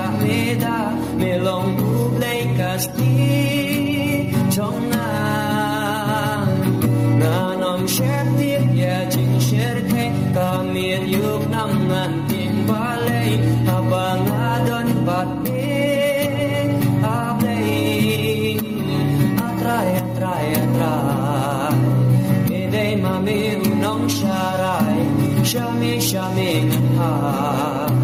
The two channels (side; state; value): both; identical; correlation 1.00